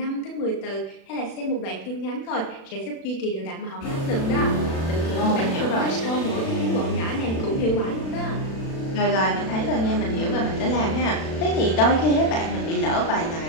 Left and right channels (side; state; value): right; late; 36 ms